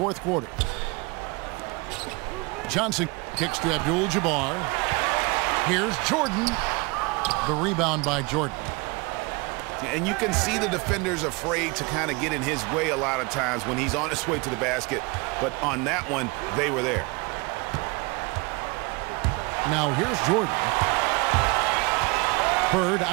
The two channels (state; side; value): quieter; left; 26.9 dB